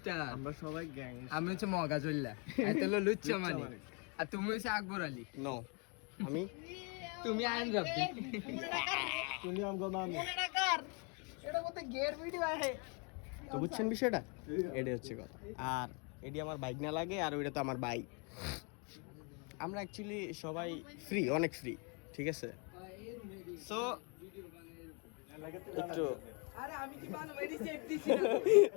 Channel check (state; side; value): quieter; right; 34.9 dB